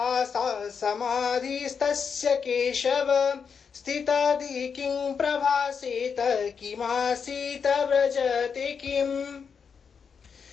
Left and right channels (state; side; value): quieter; right; 6.3 dB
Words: समाधिस्तस्य केशव स्थितादि किं प्रभासेत किमासीत व्रजते किम्